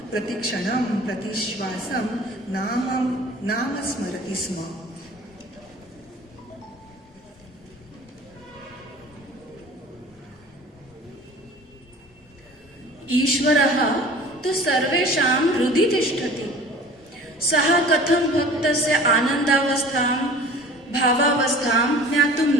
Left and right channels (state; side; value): normal; both; correlation 0.44